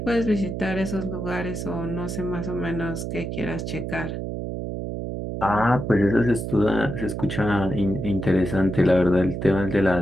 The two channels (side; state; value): right; noise; hum, 5 dB below the sound